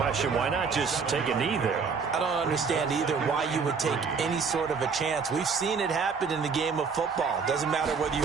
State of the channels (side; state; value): left; quieter; 5.5 dB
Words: why not just take a knee there? I don't understand either why you would take any sort of a chance. We've seen it happen in the game of football. Doesn't matter whether